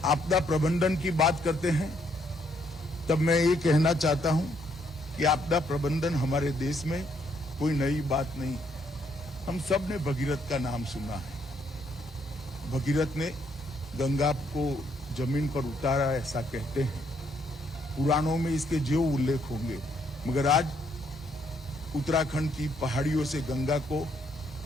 आपदा प्रबंधन की बात करते हैं तब मैं ये कहना चाहता हूं कि आपदा प्रबंधन हमारे देश में कोई नई बात नहीं। हम सब ने भगीरथ का नाम सुना है। भगीरथ ने गंगा को जमीन पर उतारा, ऐसा कहते हैं। पुराणों में इसके जो उल्लेख होंगे, मगर आज उत्तराखंड की पहाड़ियों से गंगा को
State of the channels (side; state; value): both; normal; correlation 0.71